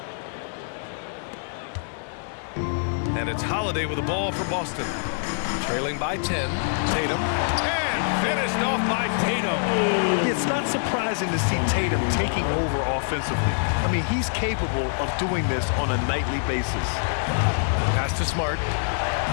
And it's Holiday with the ball for Boston. Trailing by 10. Tatum. And finished off by Tatum. It's not surprising to see Tatum taking over offensively. I mean, he's capable of doing this on a nightly basis. Pass to Smart.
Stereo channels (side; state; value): right; silent; 62 dB below the other